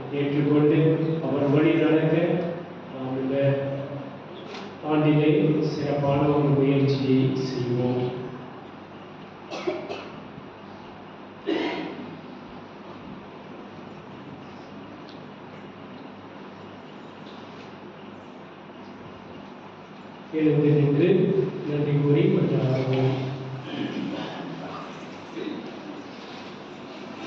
ஏற்றுக்கொண்டு அவர் வழி நடக்க நாம் இந்த ஆண்டிலே சிறப்பான ஒரு முயற்சியை செய்வோம். எழுந்து நின்று நன்றி கூறி மன்றாடுவோம்.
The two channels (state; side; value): identical; both; correlation 1.00